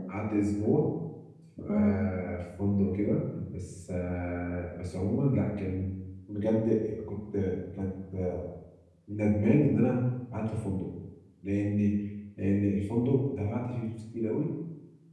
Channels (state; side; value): identical; both; correlation 1.00